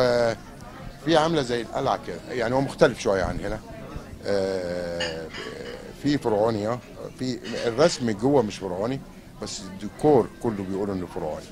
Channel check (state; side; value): identical; both; correlation 1.00